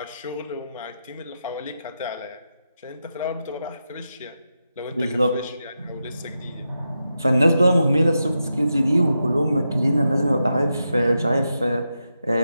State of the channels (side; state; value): both; inverted; correlation -0.88